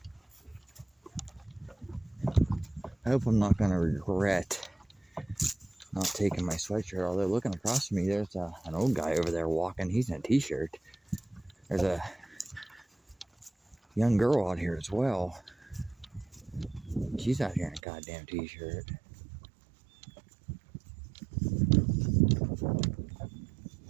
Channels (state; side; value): drops out; left; at 17.8 s